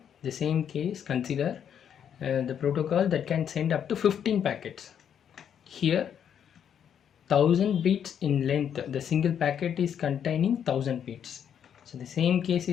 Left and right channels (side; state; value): right; quieter; 8.7 dB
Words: the same case, consider the protocol that can send up to 15 packets. Here 1000 bits in length, the single packet is containing 1000 bits. So the same case